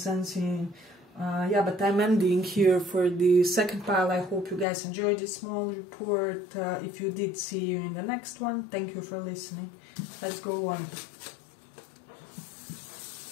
Yeah, but I'm ending here for the second pile. I hope you guys enjoyed this small report. If you did, see you in the next one. Thank you for listening. Let's go on.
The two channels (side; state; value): right; drops out; at 4.7 s